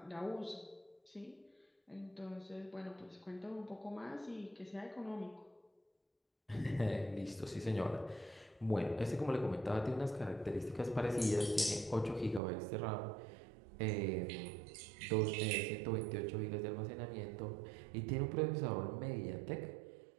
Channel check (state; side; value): drops out; left; at 12.4 s